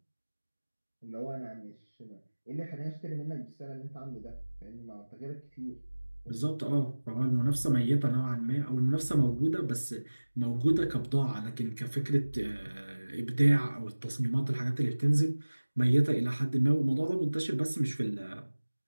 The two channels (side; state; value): both; inverted; correlation -1.00